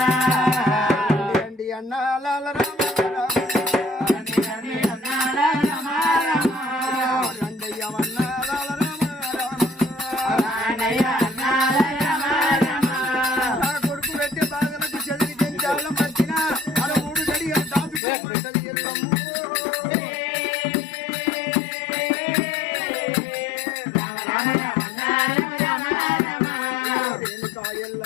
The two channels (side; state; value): right; drops out; at 18.0 s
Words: రండి అన్నాల కొడుకు పెట్టి బాధలకు చదివి తెంచాల మర్చిన అలా మూడు గడి దాచుకోమంటది ఎల్లమ్మ.